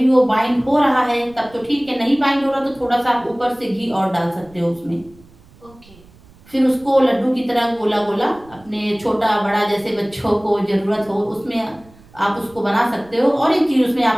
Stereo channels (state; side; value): noise; right; rumble, 26 dB below the sound